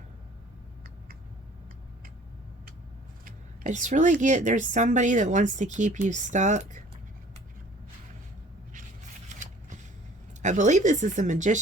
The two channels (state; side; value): normal; both; correlation 0.51